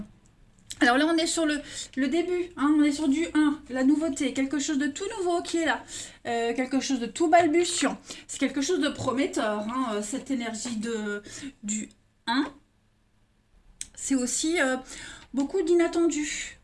Alors là, on est sur le début, on est sur du 1, la nouveauté, quelque chose de tout nouveau qui est là, quelque chose de tout balbutiant. C'est quelque chose de prometteur, cette énergie du 1. C'est aussi beaucoup d'inattendus,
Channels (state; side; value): identical; both; correlation 1.00